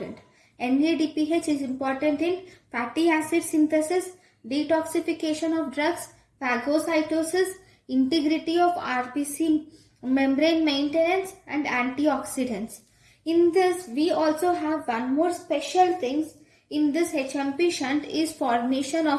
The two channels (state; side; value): identical; both; correlation 1.00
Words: NADPH is important in fatty acid synthesis, detoxification of drugs, phagocytosis, integrity of RBC membrane maintenance and antioxidants. In this, we also have one more special things in this Hepchampi shunt is formation